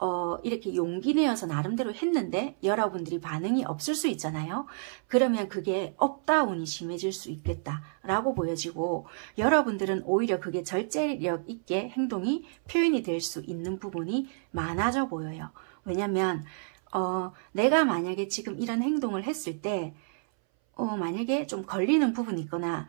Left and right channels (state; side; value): silent; left; 58 dB below the other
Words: 이렇게 용기 내어서 나름대로 했는데 여러분들이 반응이 없을 수 있잖아요. 그러면 그게 업다운이 심해질 수 있겠다라고 보여지고, 여러분들은 오히려 그게 절제력 있게 행동이 표현이 될 수 있는 부분이 많아져 보여요. 왜냐면 내가 만약에 지금 이런 행동을 했을 때 만약에 좀 걸리는 부분이 있거나